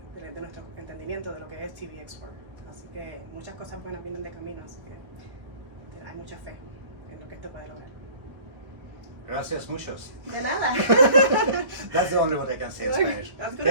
nuestro entendimiento de lo que es TBX4. Así que muchas cosas buenas vienen de camino, así que hay mucha fe en lo que esto puede lograr. Gracias muchos. De nada. That's the only what I can say in Spanish. That's good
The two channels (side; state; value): left; late; 1.3 ms